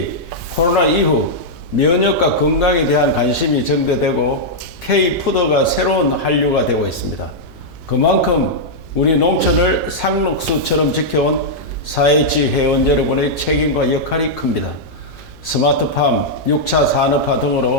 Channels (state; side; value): noise; left; hum, 25 dB below the sound